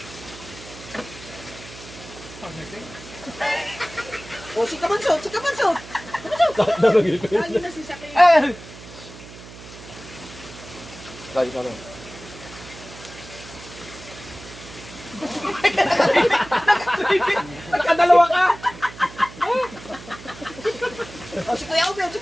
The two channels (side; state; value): right; noise; hum, 16 dB below the sound